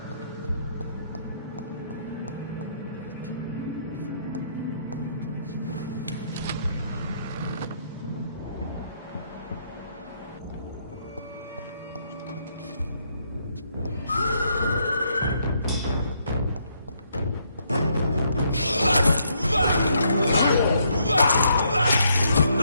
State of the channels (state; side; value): inverted; both; correlation -0.73